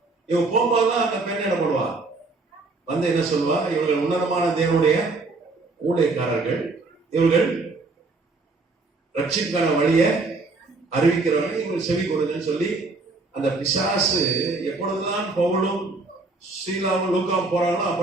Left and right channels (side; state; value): left; quieter; 3.5 dB